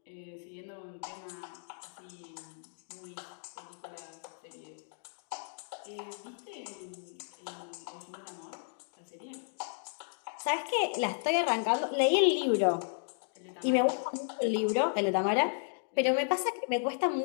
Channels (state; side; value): silent; right; digital silence